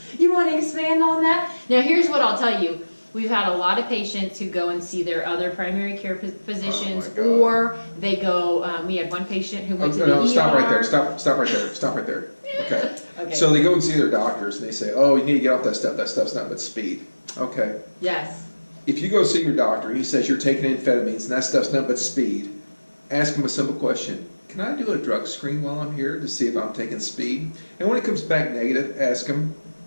You want to expand on that? Now here's what I'll tell you. We've had a lot of patients who go and see their other primary care physicians, or they go, we had one patient who went to the ER. Stop right there, stop right there, stop right there. Okay. Okay. So they go and see their doctors and they say, oh, you need to get off that stuff's not but speed. Okay. Yes. If you go see your doctor and he says you're taking amphetamines and that stuff's not but speed, ask him a simple question. Can I do a drug screen while I'm here to see if I'm taking speed? And when it comes back negative, ask him,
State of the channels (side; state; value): both; inverted; correlation -1.00